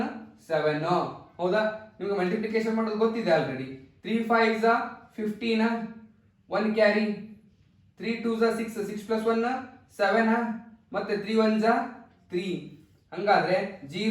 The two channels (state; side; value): identical; both; correlation 1.00